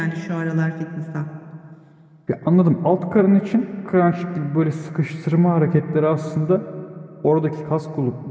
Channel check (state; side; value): identical; both; correlation 1.00